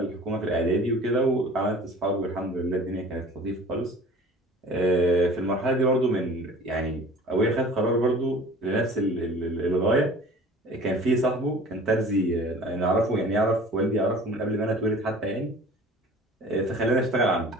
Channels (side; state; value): both; normal; correlation 0.45